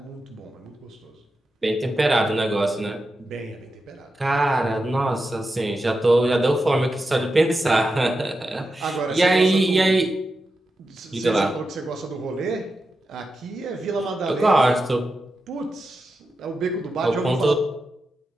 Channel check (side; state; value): both; normal; correlation 0.89